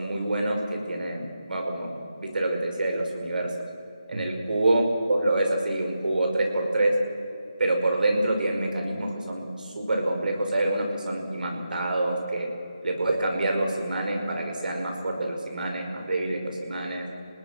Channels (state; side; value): inverted; both; correlation -0.86